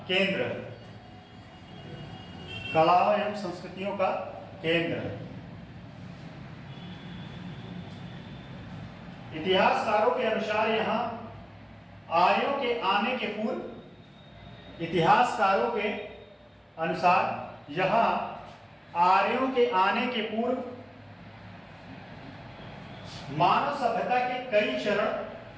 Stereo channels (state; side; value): identical; both; correlation 1.00